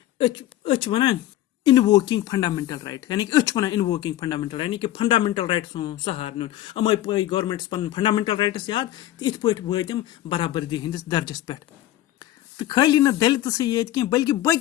वन इनवोकिंग फंडामेंटल राइट यानी कि वन इनवोकिंग फंडामेंटल यानी कि फंडामेंटल राइट्स सहार नुन अमे पे गवर्नमेंट्स पन फंडामेंटल राइट्स याद तो इत पे वम बराबरी हंदिस दर्जस पे तो खाली न दलित ये कह बल्कि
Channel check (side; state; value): right; quieter; 13.9 dB